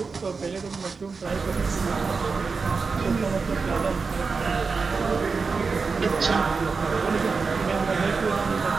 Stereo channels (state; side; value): quieter; left; 4.7 dB